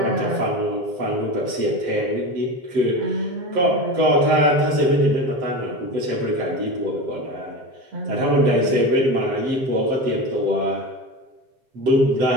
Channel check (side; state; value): left; late; 7.7 ms